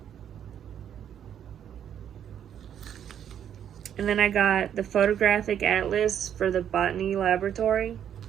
And then I got the photographic atlas for the botany laboratory.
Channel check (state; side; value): quieter; left; 9.4 dB